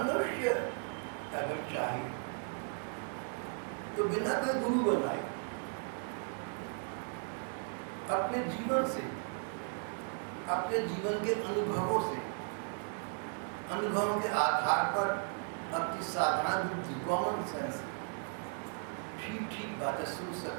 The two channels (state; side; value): silent; left; 54 dB below the other